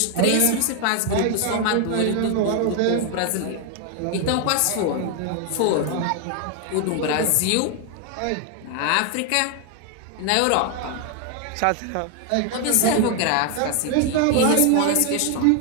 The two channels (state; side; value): different; both; correlation 0.00